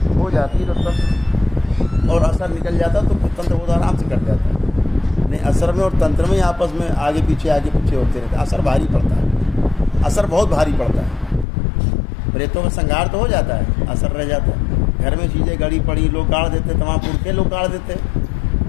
हो जाती है तब, और असर निकल जाता तो तंत्र बहुत आराम से कट जाता है। नहीं, असर में और तंत्र में आपस में आगे पीछे होते रहते, असर भारी पड़ता है, असर बहुत भारी पड़ता है। प्रेतों में संहार तो हो जाता है, असर रह जाता है। घर में चीज़ें गड़ी पड़ी लोग गाड़ देते, तमाम पुरखे लोग गाड़ देते,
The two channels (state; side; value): drops out; right; at 11.5 s